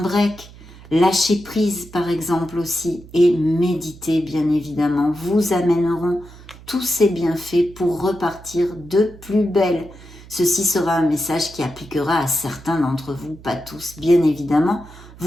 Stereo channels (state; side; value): noise; right; hum, 20 dB below the sound